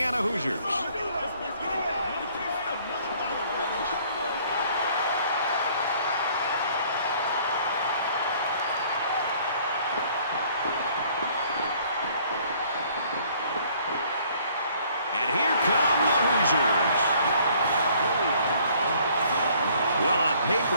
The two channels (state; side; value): inverted; both; correlation -0.59